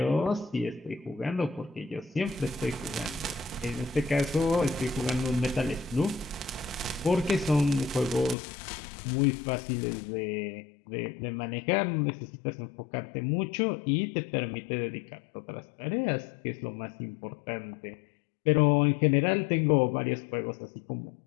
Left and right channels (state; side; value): drops out; right; at 8.3 s